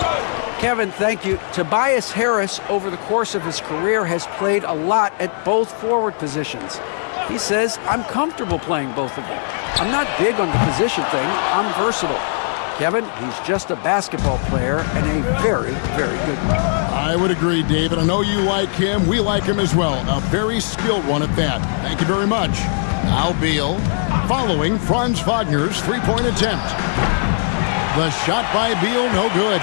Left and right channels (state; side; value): silent; right; 66 dB below the other